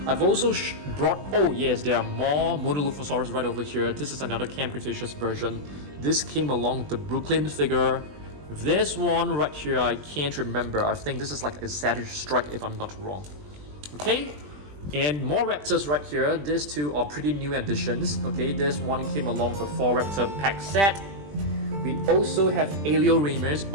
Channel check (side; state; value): left; late; 20 ms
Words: I've also brought, oh yes, there are more Dilophosaurus right over here. This is another Camp Cretaceous version. This came along with the Brooklyn figure. This one right here, I can't remember. I think this is like a Savage Strike if I'm not wrong. Okay, and more raptors right here. These 2 are pretty new additions. Okay, this one came along with a 4 raptor pack set. We also have Alioramus.